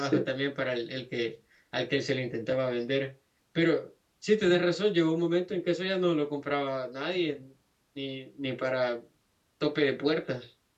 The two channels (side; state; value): both; identical; correlation 1.00